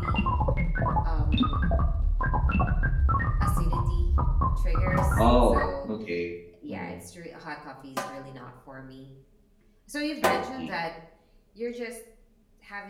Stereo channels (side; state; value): both; identical; correlation 1.00